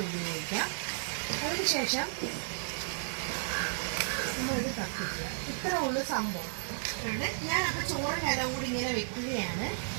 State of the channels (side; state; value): left; silent; digital silence